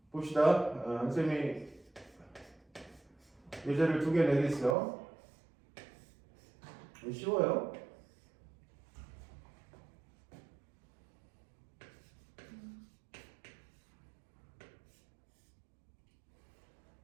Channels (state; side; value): drops out; left; at 4.8 s